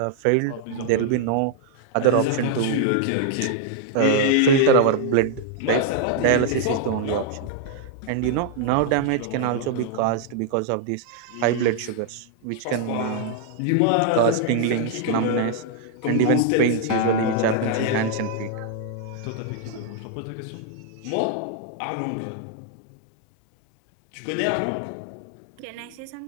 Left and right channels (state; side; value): different; both; correlation -0.01